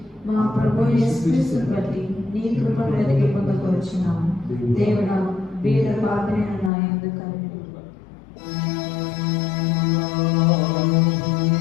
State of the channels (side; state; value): right; drops out; at 6.7 s